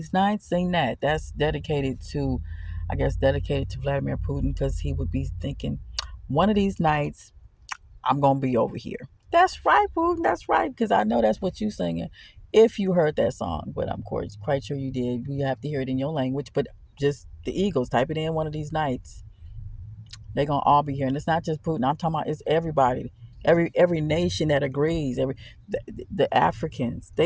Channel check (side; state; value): both; identical; correlation 1.00